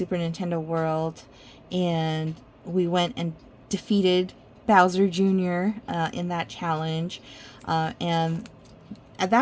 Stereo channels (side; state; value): both; identical; correlation 1.00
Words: Nintendo World. And we went and defeated Bowser Jr. In that challenge. And at